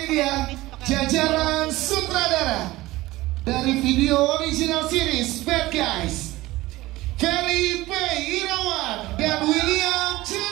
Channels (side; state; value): left; quieter; 18.5 dB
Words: dia jajaran sutradara dari video original series Bad Guys, Ferry P. Irawan dan William